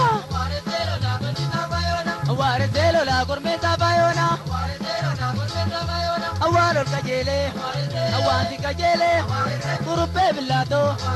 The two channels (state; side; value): identical; both; correlation 1.00